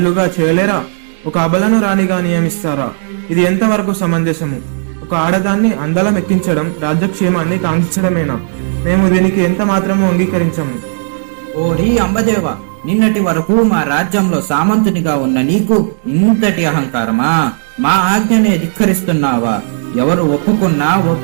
చేయలేరా? ఒక అబలను రాణిగా నియమిస్తారా? ఇది ఎంతవరకు సమంజసము? ఒక ఆడదాన్ని అందలం ఎక్కించడం రాజ్యక్షేమాన్ని కాంక్షించడమేనా? మేము దీనికి ఎంత మాత్రము అంగీకరించము. ఓరి అంబదేవ, నిన్నటి వరకు మా రాజ్యంలో సామంతునిగా ఉన్న నీకు ఇంతటి అహంకారమా? మా ఆజ్ఞనే ధిక్కరిస్తున్నావా? ఎవరు ఒప్పుకున్నా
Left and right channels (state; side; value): silent; left; digital silence